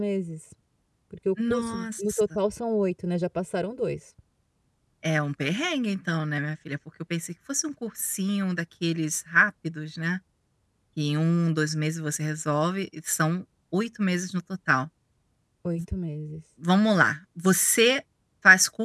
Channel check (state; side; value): identical; both; correlation 1.00